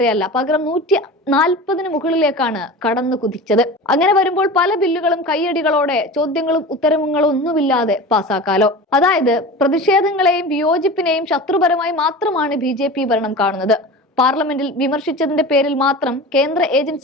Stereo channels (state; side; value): normal; both; correlation 0.33